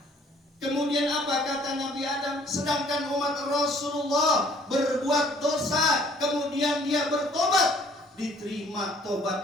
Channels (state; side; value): normal; both; correlation 0.59